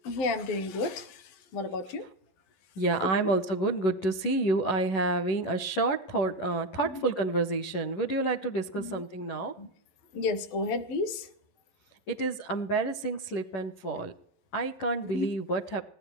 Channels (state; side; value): late; right; 11 ms